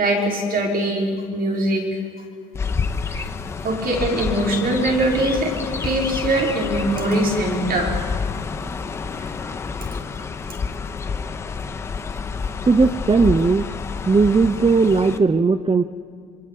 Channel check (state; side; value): normal; both; correlation 0.65